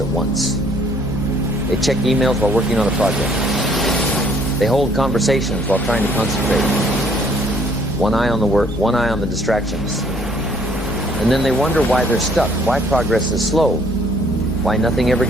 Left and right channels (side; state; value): both; normal; correlation 0.61